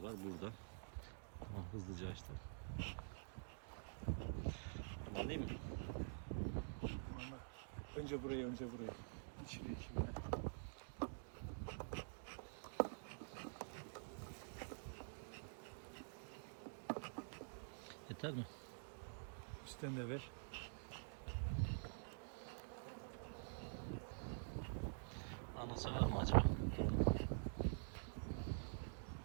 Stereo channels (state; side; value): silent; left; digital silence